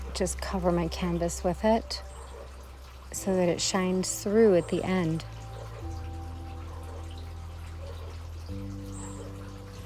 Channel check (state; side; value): identical; both; correlation 1.00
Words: just cover my canvas with it so that it shines through at the end.